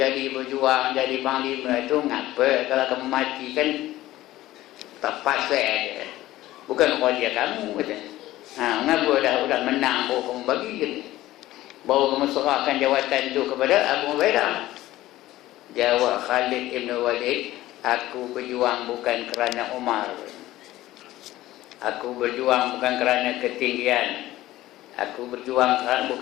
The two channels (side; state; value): right; quieter; 15.9 dB